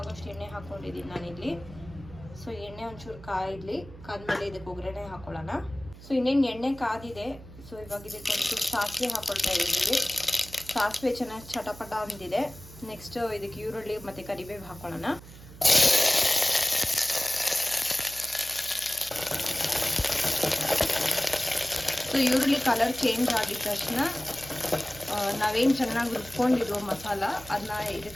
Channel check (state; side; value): noise; right; hum, 18 dB below the sound